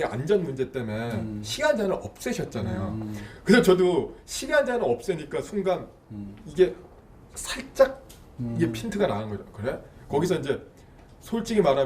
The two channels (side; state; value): both; identical; correlation 1.00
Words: 안전 문제 때문에 시간 제한을 없애셨잖아요. 그래서 저도 시간 제한을 없애니까 순간 이게 살짝 이게 핀트가 나는 거죠. 그래? 거기서 이제 솔직히